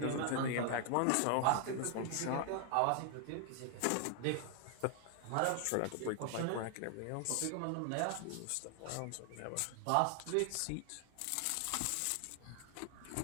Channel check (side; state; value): both; different; correlation 0.00